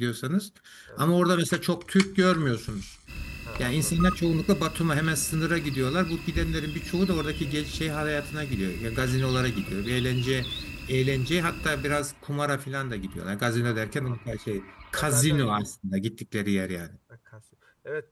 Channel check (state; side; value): identical; both; correlation 1.00